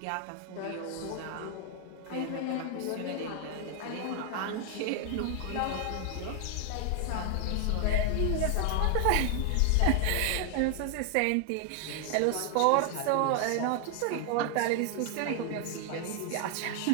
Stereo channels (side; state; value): both; different; correlation 0.00